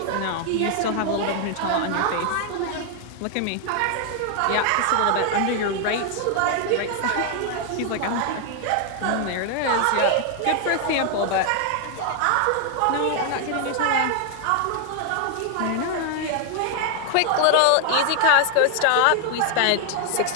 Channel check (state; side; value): different; both; correlation 0.00